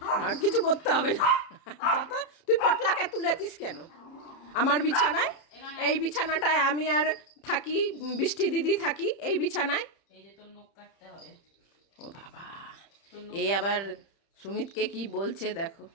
আর কিছু করতে হবে না। দাদা তুই পটলাকে তুলেছিস কেন আমার বিছানায়? এই বিছানাটায় আমি আর থাকি, বৃষ্টি দিদি থাকি এই বিছানায়। এই যে তোর নখ কাটতে হবে। ও বাবা, তোর নখ এই আবার সুমিতকে কি বলছে দেখো।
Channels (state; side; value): late; right; 30 ms